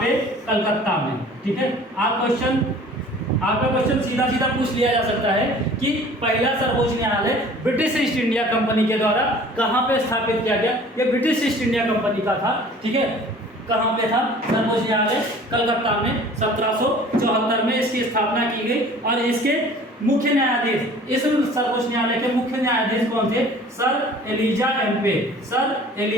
कलकत्ता में। ठीक है, आपका क्वेश्चन सीधा सीधा पूछ लिया जा सकता है कि पहला सर्वोच्च न्यायालय ब्रिटिश ईस्ट इंडिया कंपनी के द्वारा कहां पे स्थापित किया गया? ये ब्रिटिश ईस्ट इंडिया कंपनी का था। ठीक है, कहां पे था? सर्वोच्च न्यायालय कलकत्ता में 1774 में इसकी स्थापना की गई। और इसके मुख्य न्यायाधीश, इस सर्वोच्च न्यायालय के मुख्य न्यायाधीश कौन थे? Sir Elijah Impey. Sir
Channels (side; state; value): both; normal; correlation 0.48